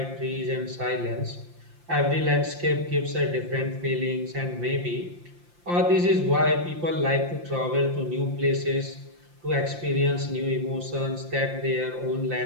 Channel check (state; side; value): late; left; 5.7 ms